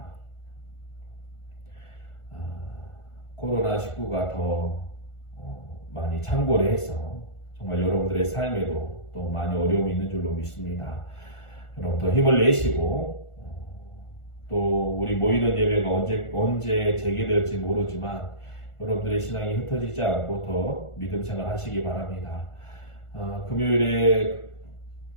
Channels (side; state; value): right; late; 1.4 ms